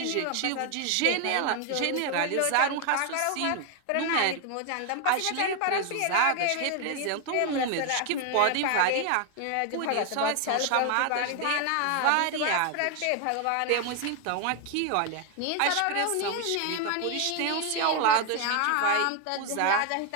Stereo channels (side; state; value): both; different; correlation 0.01